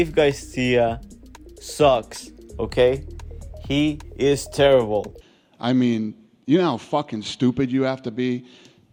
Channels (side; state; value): both; identical; correlation 1.00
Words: Garcia sucks, okay? He is terrible. I mean, you know how fucking stupid you have to be